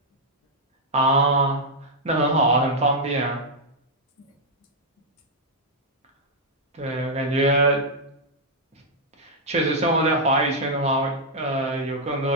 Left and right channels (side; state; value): both; normal; correlation -0.05